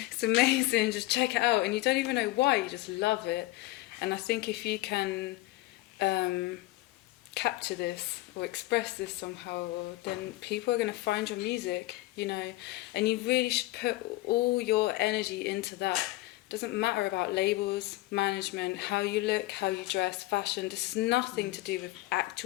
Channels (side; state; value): right; quieter; 18.5 dB